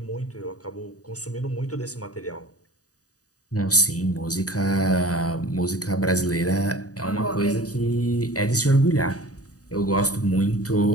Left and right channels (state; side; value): late; right; 0.67 ms